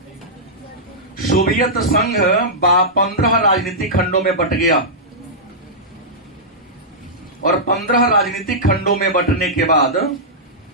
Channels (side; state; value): both; normal; correlation -0.13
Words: सोवियत संघ 15 राजनीतिक खंडों में बट गया। और 15 राजनीतिक खंडों में बंटने के बाद